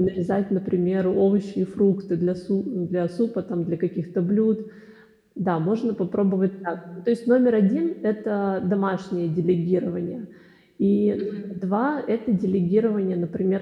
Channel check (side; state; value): both; identical; correlation 1.00